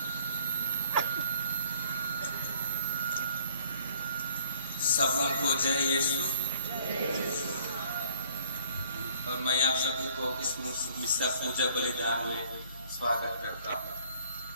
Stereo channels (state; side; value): inverted; both; correlation -0.57